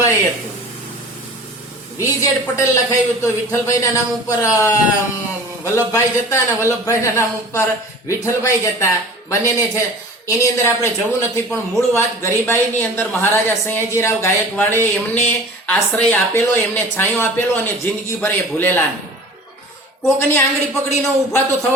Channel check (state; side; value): normal; both; correlation 0.41